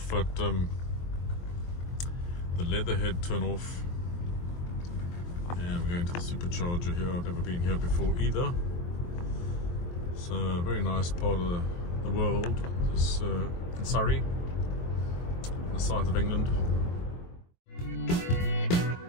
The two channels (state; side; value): late; right; 23 ms